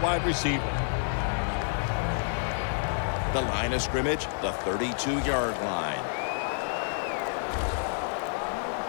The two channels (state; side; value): silent; right; 57 dB below the other